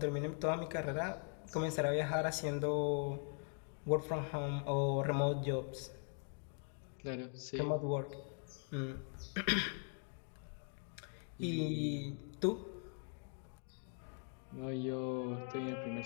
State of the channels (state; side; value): silent; right; 50 dB below the other